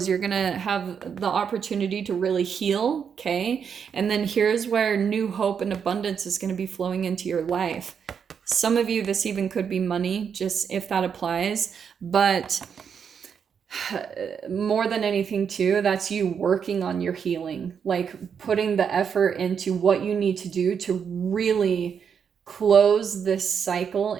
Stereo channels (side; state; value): left; quieter; 7.1 dB